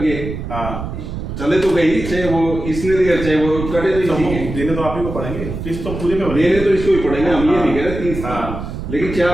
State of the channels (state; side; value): noise; right; rumble, 7 dB below the sound